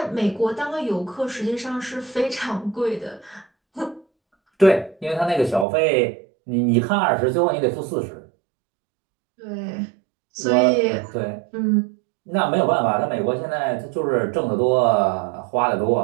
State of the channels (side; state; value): left; drops out; at 5.7 s